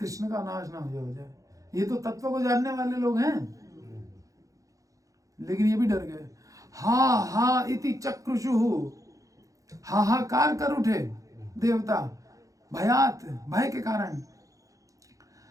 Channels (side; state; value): left; late; 0.16 ms